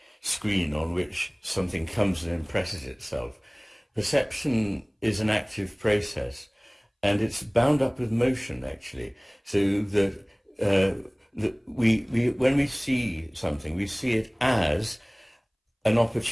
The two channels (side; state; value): both; identical; correlation 1.00